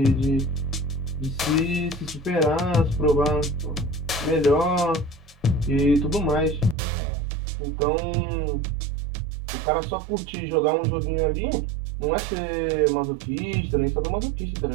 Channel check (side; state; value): left; drops out; at 6.8 s